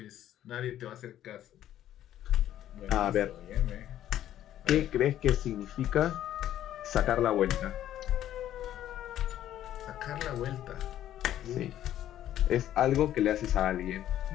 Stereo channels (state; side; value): quieter; right; 12.0 dB